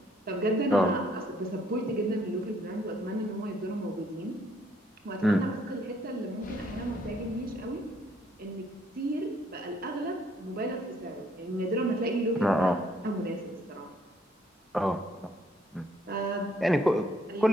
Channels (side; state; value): both; normal; correlation 0.67